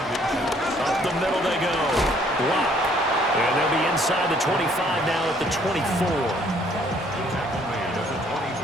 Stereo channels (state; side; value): normal; both; correlation 0.62